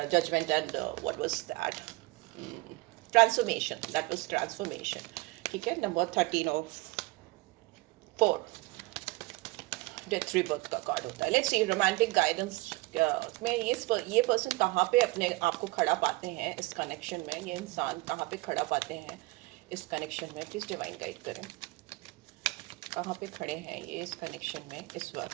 judgement and what was that, transformation, that was transformation, ठीक है, नंबर 13 ऑफ 4 डेथ रीबर्थ का कार्ड होता है। लेट्स सी रोमांटिक गाइडेंस में ये पर्सन कहाँ पे अपने आप को खड़ा पाते हैं इस कनेक्शन में, ये इंसान कहाँ पे खड़ा पाते हैं इस कनेक्शन में, प्लीज डिवाइन गाइड करें, कहाँ पे खड़े हैं ये इस कनेक्शन में इस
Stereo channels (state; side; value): quieter; left; 21.8 dB